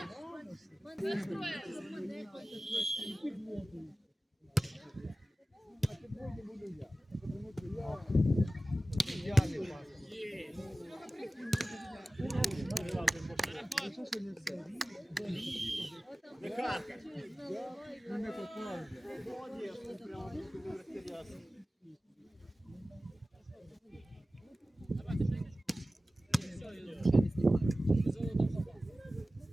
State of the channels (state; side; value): normal; both; correlation 0.96